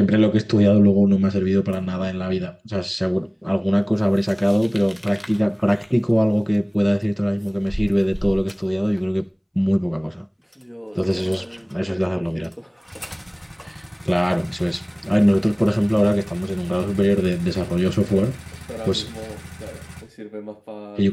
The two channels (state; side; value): identical; both; correlation 1.00